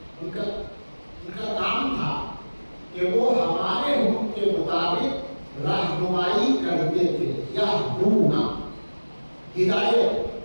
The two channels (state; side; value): inverted; both; correlation -1.00